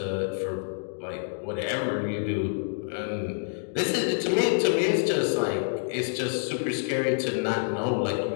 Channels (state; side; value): silent; right; digital silence